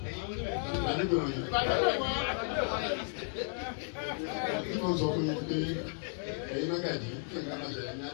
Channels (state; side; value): silent; right; 55 dB below the other